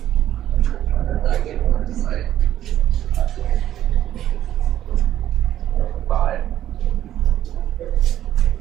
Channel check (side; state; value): left; quieter; 12.0 dB